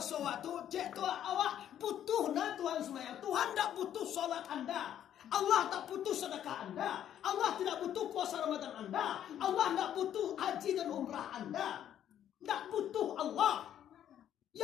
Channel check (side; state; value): right; quieter; 10.5 dB